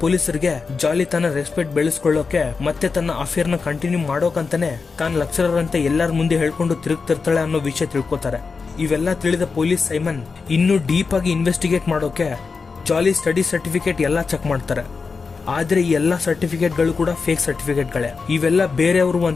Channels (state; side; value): quieter; right; 4.8 dB